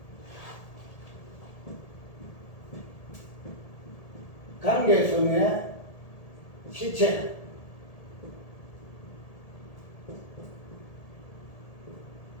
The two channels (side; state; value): right; late; 1.8 ms